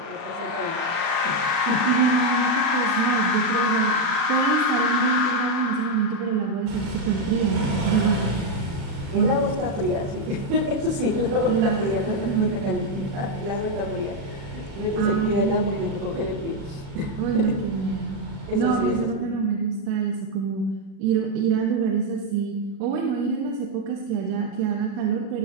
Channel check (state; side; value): late; left; 36 ms